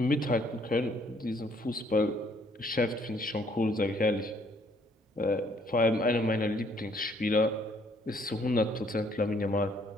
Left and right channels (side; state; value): both; normal; correlation 0.65